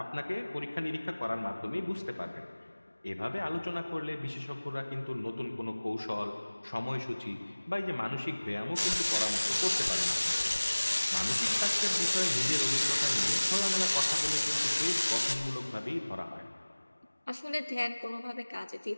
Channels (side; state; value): both; inverted; correlation -1.00